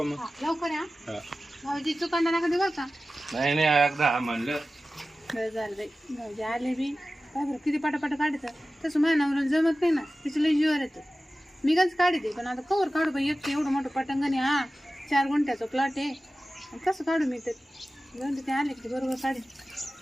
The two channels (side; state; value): both; normal; correlation 0.95